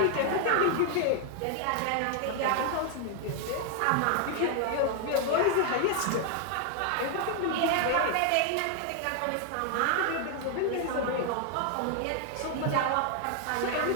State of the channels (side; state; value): both; different; correlation 0.00